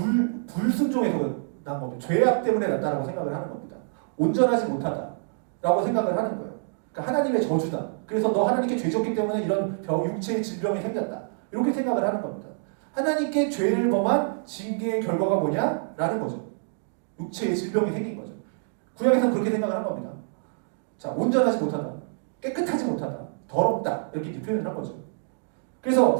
난 겁니다. 죄악 때문에 났다라고 생각을 하는 겁니다. 온전하지 못하다라고 생각을 하는 거예요. 그러니까 하나님의 저주다. 그래서 너 하나님께 죄 졌기 때문에 이런 육체의 질병이 생겼다. 이렇게 생각을 하는 겁니다. 하나님께 죄를 범한 징계의 결과가 뭐냐? 라는 거죠. 육체의 질병이 생긴 거죠. 구약에서는 그렇게 생각을 한 겁니다. 자, 온전하지 못하다. 깨끗하지 못하다. 더럽다. 이렇게 표현을 한 거죠. 그래서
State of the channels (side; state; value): left; silent; digital silence